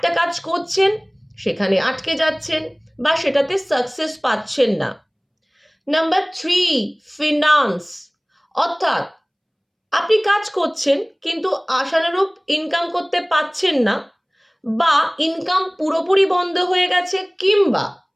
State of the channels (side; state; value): both; identical; correlation 1.00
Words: কাজ করছেন, সেখানে আটকে যাচ্ছেন বা সেটাতে সাকসেস পাচ্ছেন না। নাম্বার 3, ফিনান্স, অর্থাৎ আপনি কাজ করছেন কিন্তু আশানুরূপ ইনকাম করতে পাচ্ছেন না, বা ইনকাম পুরোপুরি বন্ধ হয়ে গেছে, কিংবা